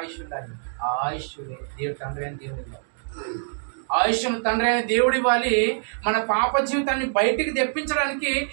ఉండాలి. ఆ ఆయుష్ దేవుడు తండ్రి అని దేవుడు ఇవ్వాలి. ఆయుష్ను తండ్రి అయిన దేవుడు ఇవ్వాలి. మన పాప జీవితాన్ని బయటికి తెప్పించడానికి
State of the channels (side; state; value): left; silent; digital silence